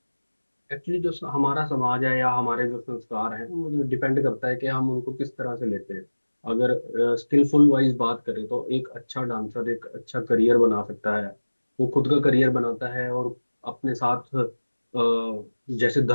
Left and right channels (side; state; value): both; inverted; correlation -1.00